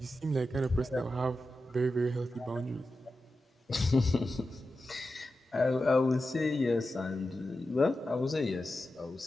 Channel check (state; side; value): normal; both; correlation 0.91